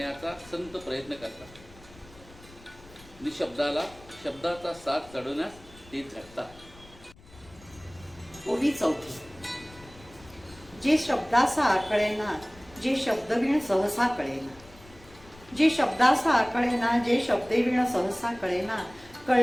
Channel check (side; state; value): left; noise; rumble, 23 dB below the sound